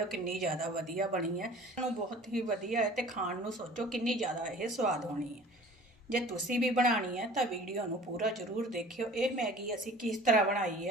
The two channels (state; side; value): normal; both; correlation 0.46